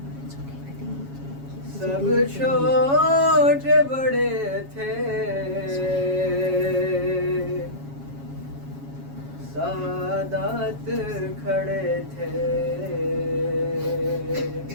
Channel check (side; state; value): left; late; 7.3 ms